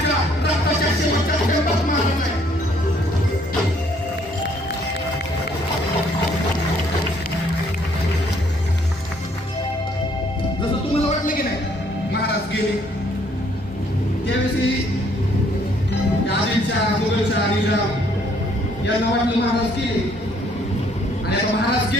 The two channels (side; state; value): both; normal; correlation 0.64